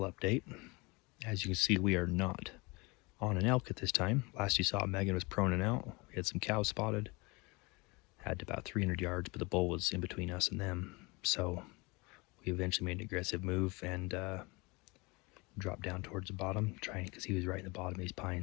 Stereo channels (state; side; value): quieter; right; 26.0 dB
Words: update. As you can see, we are not on an elk at this time. Last you saw, Megan was proning out. We had some cows spotted. Had about 300 yards, but the bull was in between us and them. So we eventually made an aggressive move and dropped down towards the bottom, trying because he was right in the bottom of these